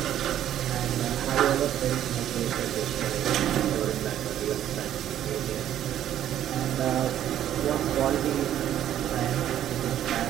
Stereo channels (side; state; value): left; quieter; 11.3 dB